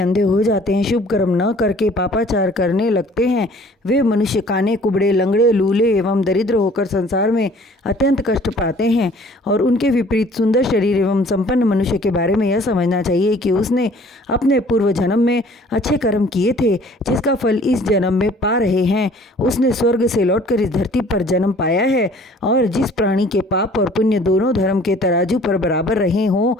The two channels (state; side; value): normal; both; correlation 0.53